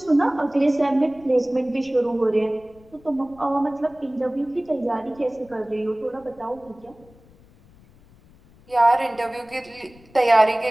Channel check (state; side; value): noise; left; rumble, 27 dB below the sound